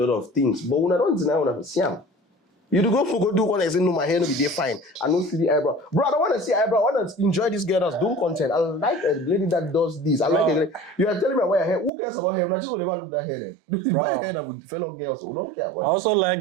of things, but when I don't deny when I see them. You go do one and say, no, my hair no be there fine. I don't see the eyebrow. Bro, I don't want to see eyebrow. I want to enjoy this girl that's doing content. I like a lady that does this. I like a lady. You are telling me about your hair. Who cares about hair? I just want to look that hair then. Buy a hair that with fellow girls who don't care about it. I also like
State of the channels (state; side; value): drops out; left; at 11.9 s